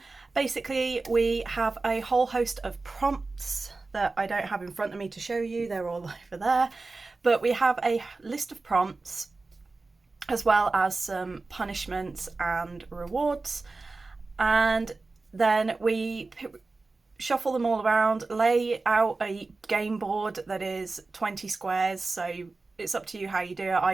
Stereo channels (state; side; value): quieter; left; 3.6 dB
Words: Basically we have a whole host of prompts that I don't have in front of me to show you, they're all over there, but we have a list of prompts as well as some punishments and rewards, and then we shuffle them all around, lay out a game board that is 20 squares, so it's up to you how you do it.